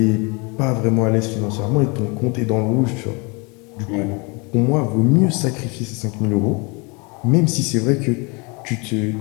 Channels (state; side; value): quieter; right; 30.3 dB